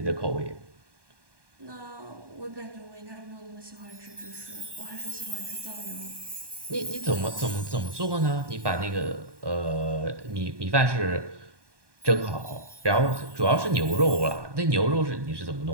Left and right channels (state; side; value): late; left; 1.2 ms